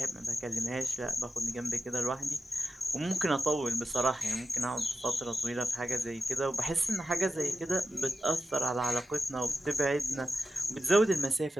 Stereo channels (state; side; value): normal; both; correlation 0.92